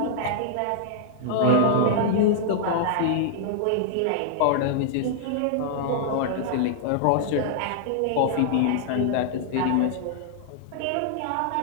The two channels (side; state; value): both; different; correlation -0.01